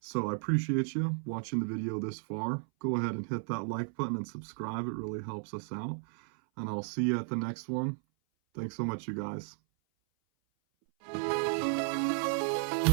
I appreciate you watching the video this far. Go ahead and hit that like button and subscribe. It really helps us out. And I'll see you at the next one. Thanks so much, you guys. In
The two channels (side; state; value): left; silent; 55 dB below the other